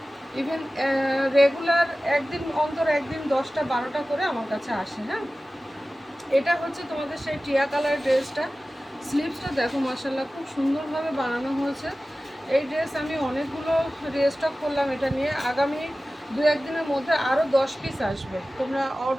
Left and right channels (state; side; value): normal; both; correlation 0.96